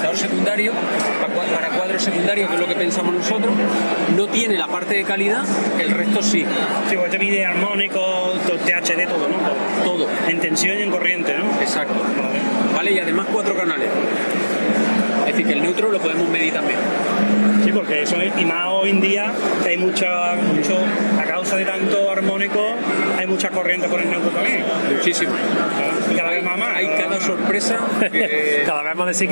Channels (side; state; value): both; inverted; correlation -1.00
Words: secundario, para cuadros secundarios, que es lo que pensamos nosotros, no tiene la parte de calidad, el resto sí. Sí, pues te mide armónico, THD, todo, ¿no? Todo. En tensión y en corriente, ¿no? Exacto. Vale, y además 4 canales. Es decir, que el neutro lo podemos medir también. Sí, porque eso es, y más hoy en día que hay mucho, a causa de tanto armónico, hay mucha corriente por el neutro también. Muchísimo. Y cada vez más. Hay cada sorpresa. Cada vez más